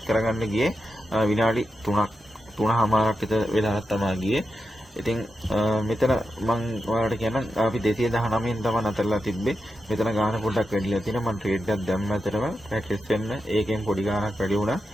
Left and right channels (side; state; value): both; normal; correlation 0.89